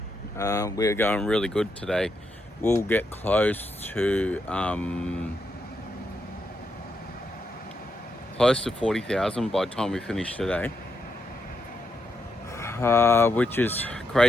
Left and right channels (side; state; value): both; normal; correlation 0.81